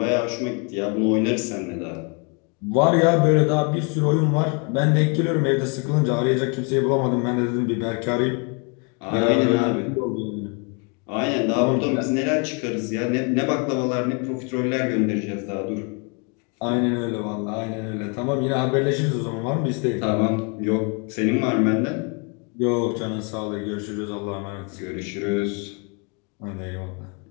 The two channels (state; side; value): quieter; right; 35.0 dB